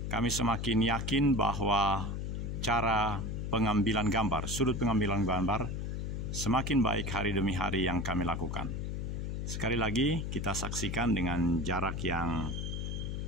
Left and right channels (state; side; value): noise; left; hum, 3 dB below the sound